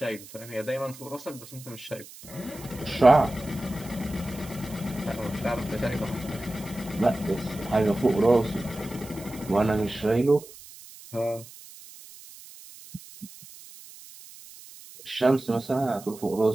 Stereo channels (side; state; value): right; noise; hiss, 18 dB below the sound